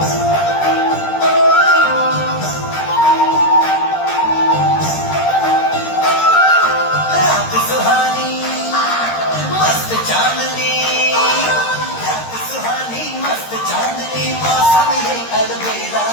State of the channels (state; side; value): late; right; 13 ms